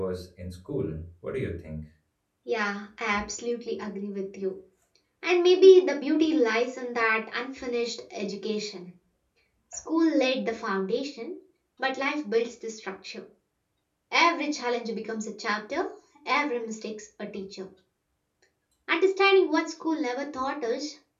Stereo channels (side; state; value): both; identical; correlation 1.00